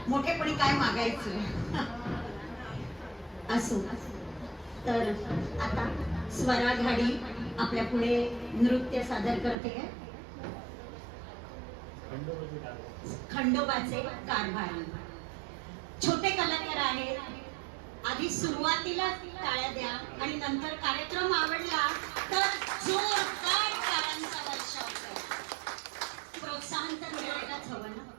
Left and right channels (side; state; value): left; drops out; at 9.6 s